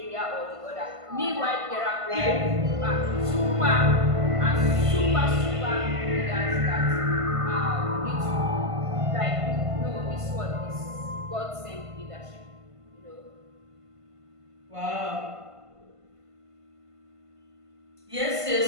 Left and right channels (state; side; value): late; left; 1.5 ms